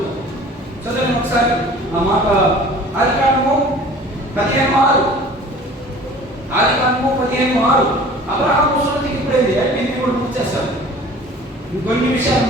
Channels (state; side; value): normal; both; correlation 0.46